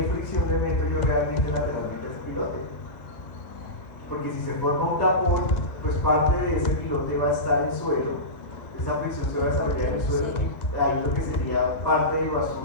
fricción le meto yo realmente lateralmente a ese pilote? Porque si se forma un tapón, pues parte de ese pilote va a estar en suelo, esa fricción se va a desarrollar en el suelo, ahí lo que sería parte de lo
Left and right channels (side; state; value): right; late; 1.3 ms